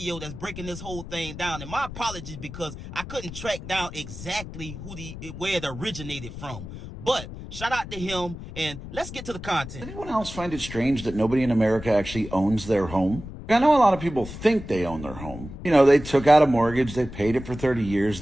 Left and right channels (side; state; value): left; noise; rumble, 11 dB below the sound